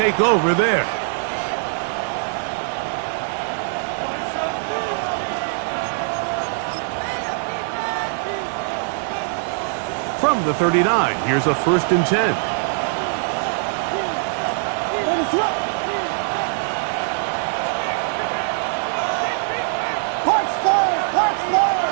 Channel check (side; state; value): left; silent; digital silence